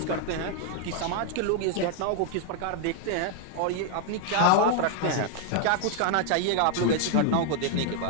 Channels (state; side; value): different; both; correlation 0.00